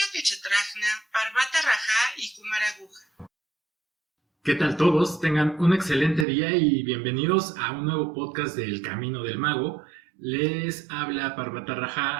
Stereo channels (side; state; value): left; drops out; at 6.2 s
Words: Kechetrajna, Parvata Raja y Kumaraguja. ¿Qué tal todos? Tengan un excelente día y bienvenidos a un nuevo podcast del Camino del Mago. Les habla Parvata